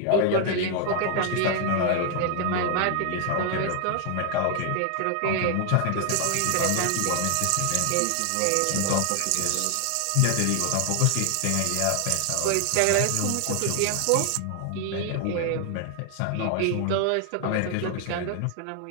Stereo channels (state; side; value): different; both; correlation 0.00